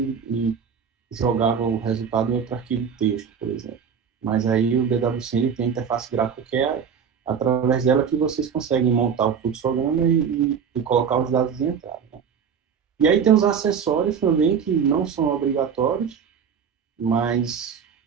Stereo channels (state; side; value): quieter; left; 7.0 dB